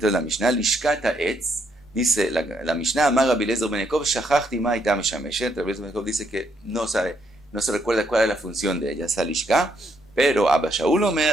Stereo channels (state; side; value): normal; both; correlation 0.74